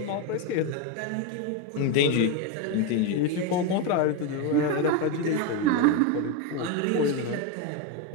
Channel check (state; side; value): different; both; correlation 0.04